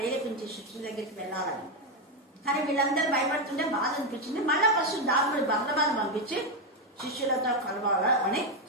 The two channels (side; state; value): both; normal; correlation 0.07